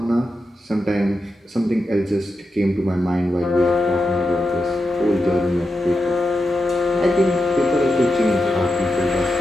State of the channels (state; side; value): normal; both; correlation 0.88